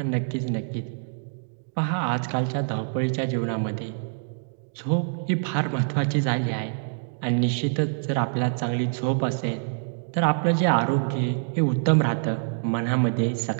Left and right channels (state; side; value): silent; left; digital silence